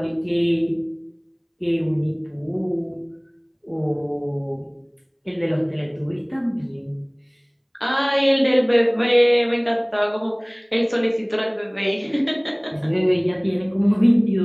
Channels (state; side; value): identical; both; correlation 1.00